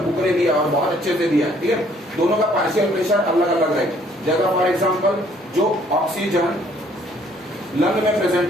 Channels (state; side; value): normal; both; correlation 0.62